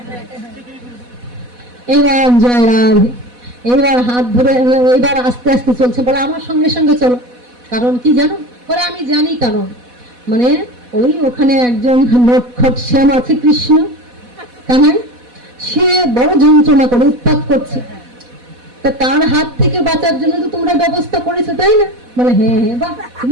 এবার জয় রাধে, এইবার হাত ধরে, এইবার আস্তে আস্তে চলছে, বলে আমার সঙ্গে সঙ্গে চলো। কারণ কি জানো? বলে আমি জানি কারণ, মানে ওই ওখানে একজন নটখট শ্যাম আছে, কৃষ্ণ কানাই, সে বড় যন্ত্রণা করে উৎপাত করছে, তা তার হাত থেকে বাঁচার জন্য তো তোমরা ব্যবস্থা করেছো, তাই না? বলে হ্যাঁ হ্যাঁ, বাহ,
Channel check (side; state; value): left; late; 4.1 ms